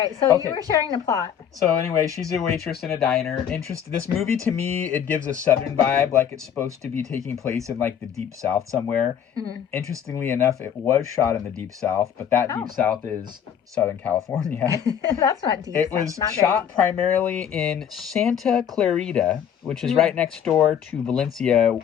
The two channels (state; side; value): quieter; right; 8.7 dB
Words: So you were sharing the plot. So anyway, she's a waitress in a diner. This movie, to me, it gives a Southern vibe, like it's supposed to be taking place in like the Deep South somewhere. Mm-hmm. Interestingly enough, it was shot in the Deep South, but that Deep South is Southern California. That's not deep. It was shot primarily in Santa Clarita, which is right next door to Valencia,